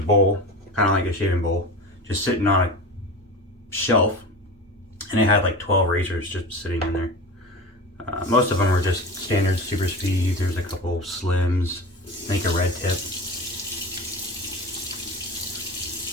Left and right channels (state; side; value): normal; both; correlation 0.30